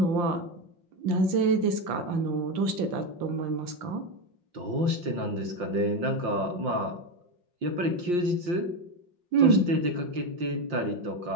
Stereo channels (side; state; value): left; late; 5.7 ms